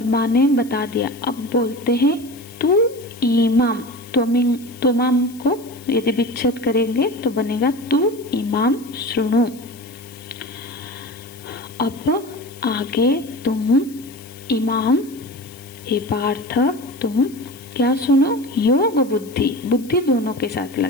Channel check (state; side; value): noise; left; hiss, 21 dB below the sound